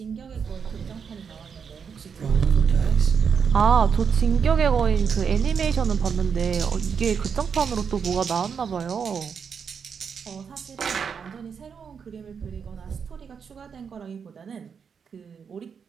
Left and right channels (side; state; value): left; quieter; 6.5 dB